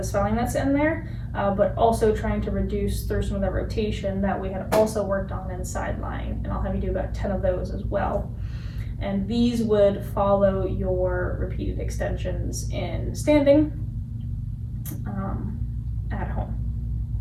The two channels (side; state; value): both; identical; correlation 1.00